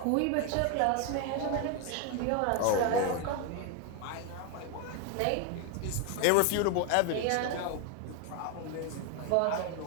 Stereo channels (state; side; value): different; both; correlation 0.01